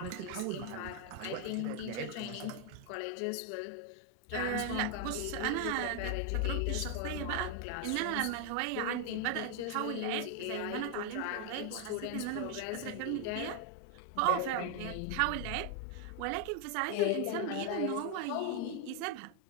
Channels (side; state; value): both; different; correlation 0.01